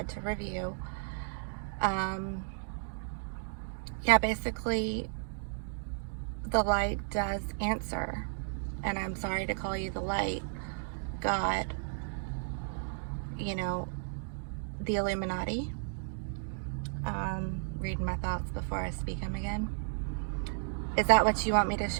to review, basically the light does answer. And I'm sorry to call you the light, God, the Illuminati. Reading my thoughts before I speak them again. Is that what you want me to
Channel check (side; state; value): left; silent; digital silence